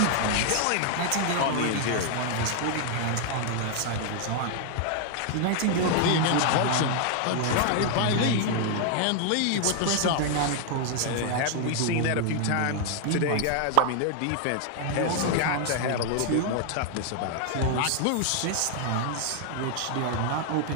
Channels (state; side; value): different; both; correlation 0.00